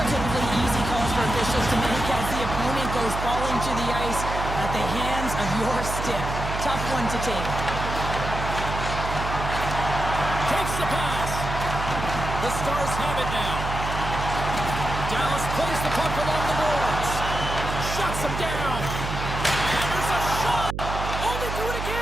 typically easy calls for officials to make as the opponent goes falling to the ice at the hands of your stick. Tough one to take. Takes the pass. The Stars have it now. Dallas plays the puck along the boards. Shuts him down. And there's a shot. Oh, they do it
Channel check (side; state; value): right; noise; hum, 5 dB below the sound